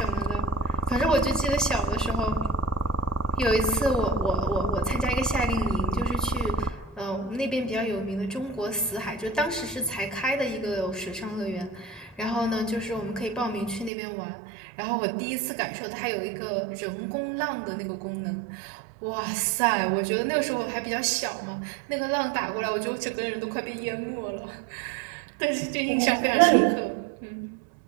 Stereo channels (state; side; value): drops out; left; at 13.9 s